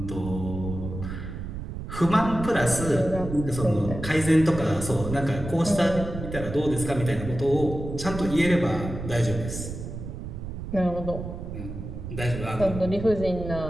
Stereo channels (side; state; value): right; noise; rumble, 8 dB below the sound